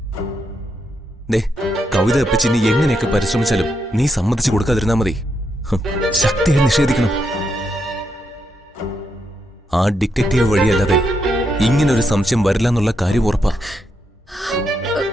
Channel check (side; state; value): both; normal; correlation 0.80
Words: ദേ, കവിത അപ്പച്ചി നീ എങ്ങനെയൊക്കെ പരിശ്രമിച്ചാലും നീ സമ്മതിച്ചു കൊടുക്കാതിരുന്നാ മതി. ശക്തിയെ നിഷേധിക്കണം. ആ ഡിറ്റക്റ്റീവ് വഴിയല്ലാതെ ഇങ്ങനൊരു സംശയം വരില്ല എന്നുള്ള കാര്യം ഉറപ്പാ.